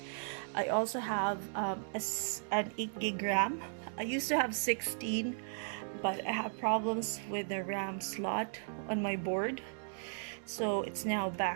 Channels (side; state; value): left; silent; 54 dB below the other